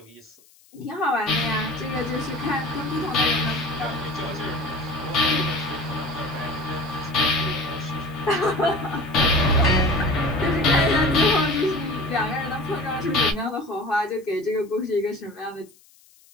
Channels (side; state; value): left; noise; hiss, 29 dB below the sound